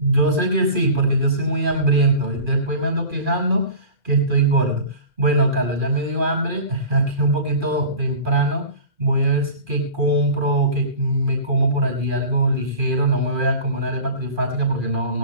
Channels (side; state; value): left; late; 2.4 ms